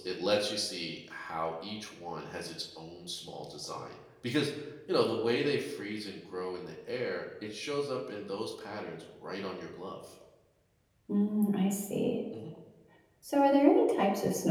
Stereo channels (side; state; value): both; identical; correlation 1.00